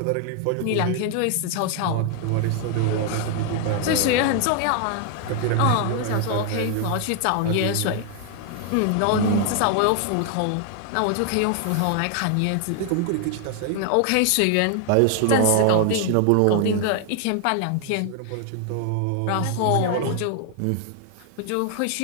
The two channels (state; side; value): different; both; correlation 0.00